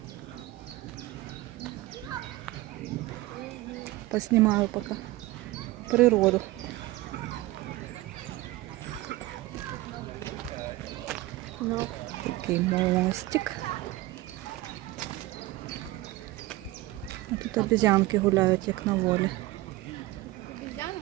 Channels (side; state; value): left; quieter; 18.5 dB